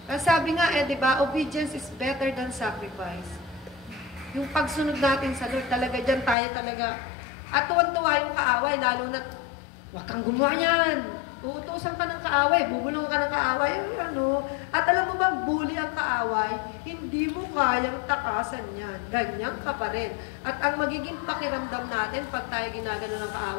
Ang sabi nga di ba, obedience is better than sacrifice. Yung pagsunod natin sa Lord, talaga dyan tayo talaga. At tuwan-tuwa yung kaaway, lalo na huwag kang gumawa yan. Uutusan ka ng kaaway, bubulong ka ng kaaway. At alam mo bang bully ang kaaway? Hindi mo kayang takasan yan. Ganyan ka pa rin. At ang magiging pakiramdam natin pag tayo ginagano ng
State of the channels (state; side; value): drops out; right; at 6.4 s